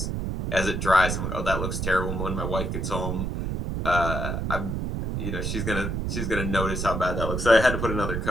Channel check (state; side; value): noise; right; rumble, 2 dB below the sound